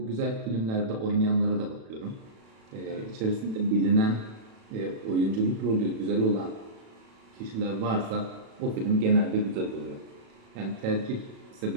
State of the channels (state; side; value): late; left; 36 ms